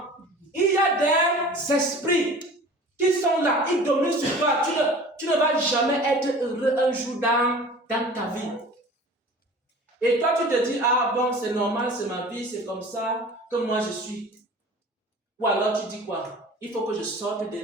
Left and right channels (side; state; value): both; normal; correlation 0.42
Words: Il y a des esprits qui sont là, ils dominent sur toi. Tu ne vas jamais être heureux un jour dans ta vie. Et toi, tu te dis, ah bon, c'est normal, c'est ma vie, c'est comme ça que moi je suis. Ou alors tu dis quoi? Il faut que je sorte de